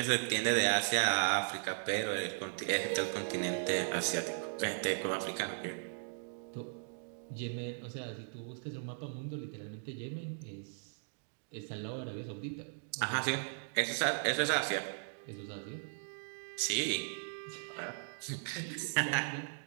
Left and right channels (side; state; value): left; silent; digital silence